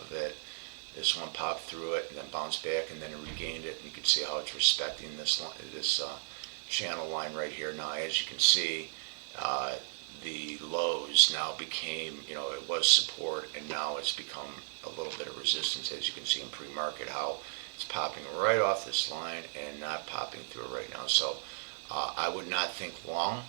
it. This one popped through it and then bounced back, and then it regained it. You can see how it's respecting this channel line right here. Now, as you can see, the lows now became, it was support, and now it's become a little bit of resistance, as you can see in pre-market, how it's popping right off this line and not popping through it right now. So I would not think long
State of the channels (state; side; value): silent; left; 55 dB below the other